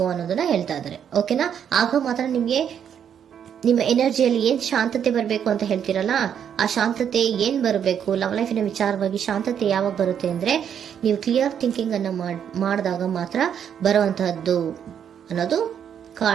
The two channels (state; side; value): quieter; left; 8.5 dB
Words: ಅನ್ನೋದನ್ನ ಹೇಳ್ತಾ ಇದ್ದಾರೆ. ಓಕೆನಾ? ಆಗ ಮಾತ್ರ ನಿಮ್ಗೆ ನಿಮ್ಮ ಎನರ್ಜಿಯಲ್ಲಿ ಏನ್ ಶಾಂತತೆ ಬರಬೇಕು ಅಂತ ಹೇಳ್ತೀರಲ್ಲ, ಆ ಶಾಂತತೆ ಏನ್ ಬರಬೇಕು, ಲವ್ ಲೈಫಿನ ವಿಚಾರವಾಗಿ ಶಾಂತತೆ ಯಾವಾಗ ಬರುತ್ತೆ ಅಂದ್ರೆ ನೀವು ಕ್ಲಿಯರ್ ಥಿಂಕಿಂಗ್ ಅನ್ನ ಮಾಡಿದಾಗ ಮಾತ್ರ ಬರುವಂತಹದ್ದು ಅನ್ನೋದು